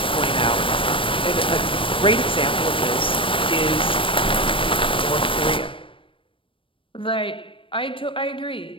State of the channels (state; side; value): late; right; 0.25 ms